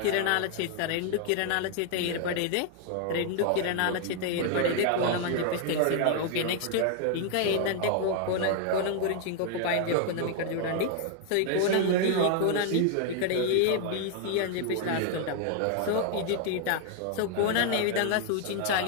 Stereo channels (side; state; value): both; different; correlation 0.00